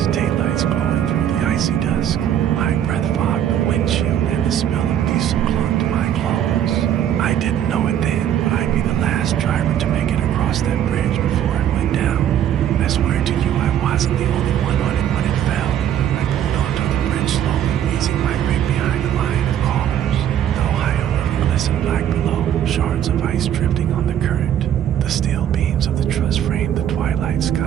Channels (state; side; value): quieter; left; 10.3 dB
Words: taillights glowing through the icy dusk. My breath fogged the windshield and the smell of diesel clung to my clothes. I didn't know it then, but I'd be the last driver to make it across that bridge before it went down. I swear to you, I wasn't the only one on it when it fell. I pulled onto the bridge slowly, easing my rig behind a line of cars. The Ohio River glistened black below, shards of ice drifting on the current. The steel beams of the truss framed the twilight